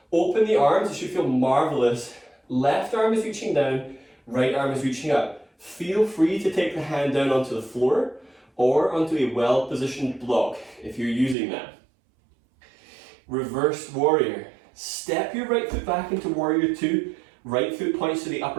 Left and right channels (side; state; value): left; drops out; at 11.4 s